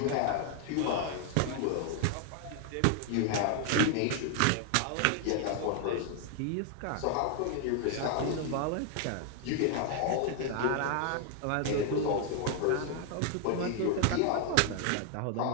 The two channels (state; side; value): different; both; correlation 0.00